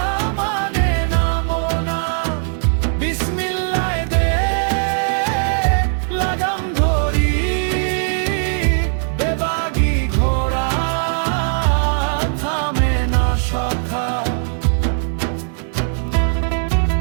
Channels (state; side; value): silent; left; digital silence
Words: মানে নামো না। বিসমিল্লাহ দে লাগাম ধরি, বেবাগি ঘোড়া থামে না সখা।